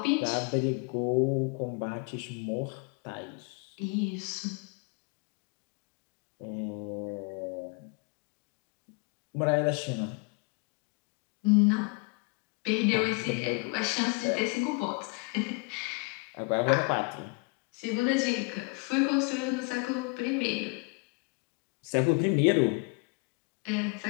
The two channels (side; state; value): right; quieter; 32.7 dB